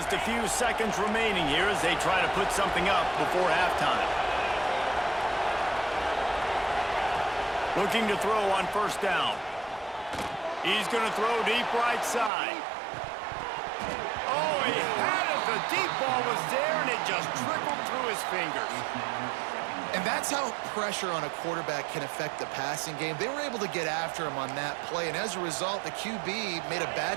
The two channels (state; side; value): drops out; left; at 12.3 s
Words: a few seconds remaining here as they try to put something up before halftime. Looking to throw on 1st down. He's going to throw deep right side. Oh, he had it. The deep ball was there, and it just trickled through his fingers. And that's how pressure on a quarterback can affect the passing game. They were able to get after him on that play, and as a result, the QB made a